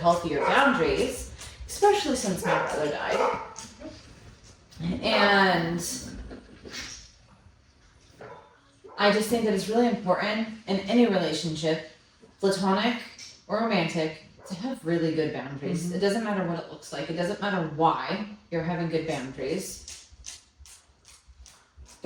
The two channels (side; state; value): both; identical; correlation 1.00